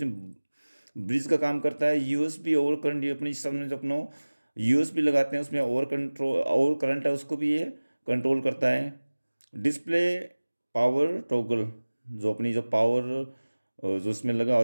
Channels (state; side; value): inverted; both; correlation -1.00